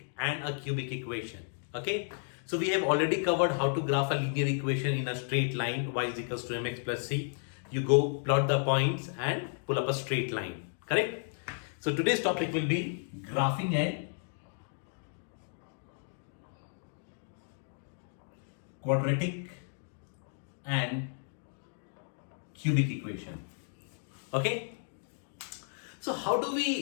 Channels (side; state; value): right; silent; digital silence